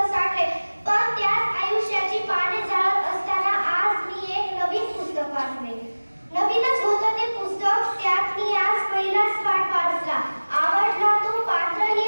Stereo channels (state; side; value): inverted; both; correlation -1.00